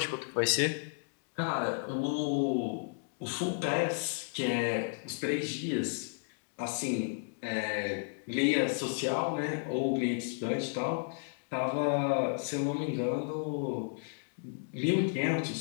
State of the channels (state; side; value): silent; right; digital silence